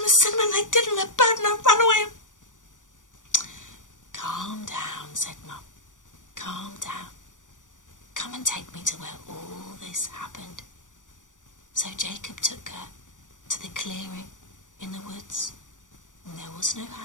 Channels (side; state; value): right; late; 0.87 ms